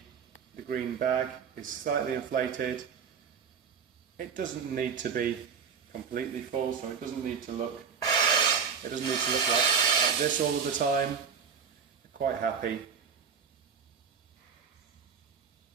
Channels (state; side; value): quieter; left; 6.6 dB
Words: green bag is slightly inflated. It doesn't need to be completely full, so it doesn't need to look like this all of the time. I'm quite happy